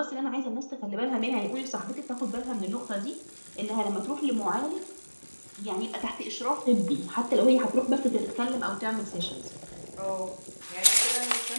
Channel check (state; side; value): inverted; both; correlation -1.00